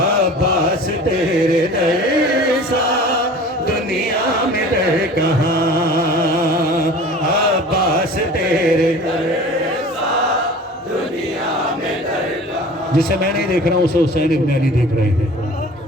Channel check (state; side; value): normal; both; correlation 0.42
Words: तेरे जैसा दुनिया में दर कहाँ? अब्बास तेरे जिसे मैं नहीं देख रहा हूं उसे हुसैन इब्न अली देख रहे